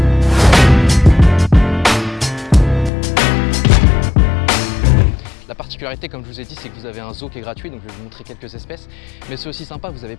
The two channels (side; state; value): right; drops out; at 2.9 s